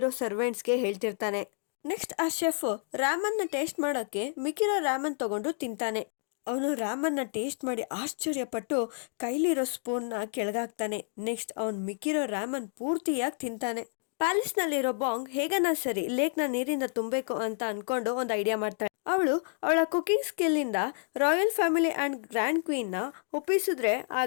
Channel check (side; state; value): right; silent; 58 dB below the other